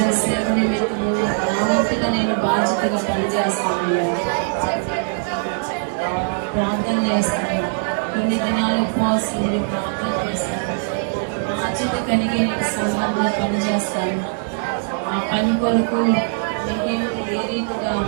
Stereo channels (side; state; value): left; silent; digital silence